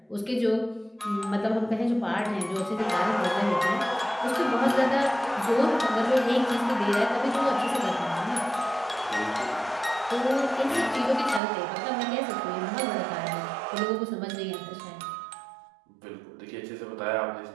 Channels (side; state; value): left; drops out; at 11.4 s